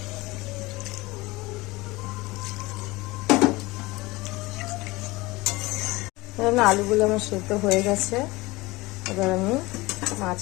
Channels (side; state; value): right; quieter; 21.7 dB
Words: আলুগুলো আমার সেদ্ধ হয়ে গেছে, এবার আমি